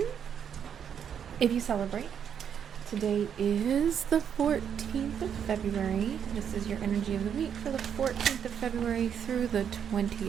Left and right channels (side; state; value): left; quieter; 8.2 dB